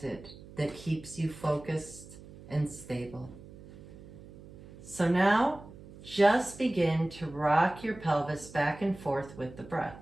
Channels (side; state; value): right; noise; hum, 18 dB below the sound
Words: that keeps you focused and stable. So now, just begin to rock your pelvis back and forth with the breath.